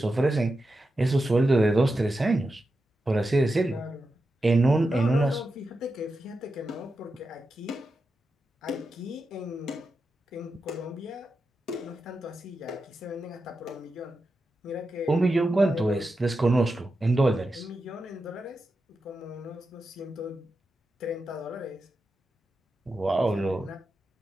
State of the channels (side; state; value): both; normal; correlation 0.89